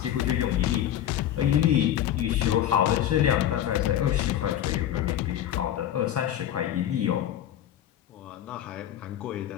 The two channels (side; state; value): right; quieter; 11.3 dB